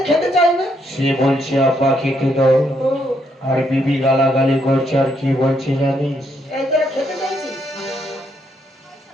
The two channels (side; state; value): both; normal; correlation 0.75